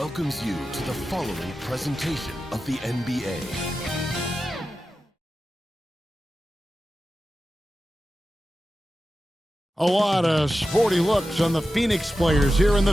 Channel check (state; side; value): normal; both; correlation 0.92